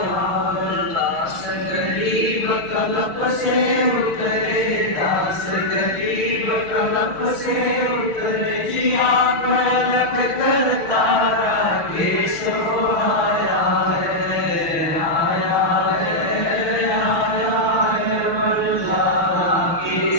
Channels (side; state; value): right; late; 6.3 ms